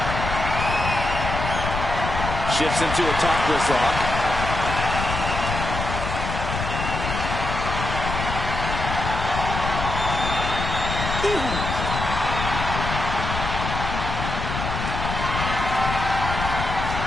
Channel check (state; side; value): noise; left; rumble, 4 dB below the sound